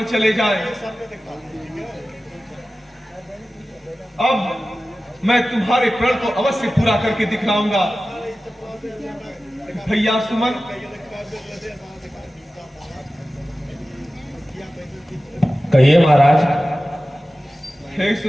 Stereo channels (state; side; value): normal; both; correlation 0.95